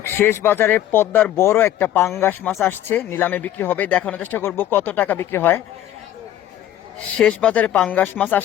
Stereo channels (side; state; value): right; quieter; 12.1 dB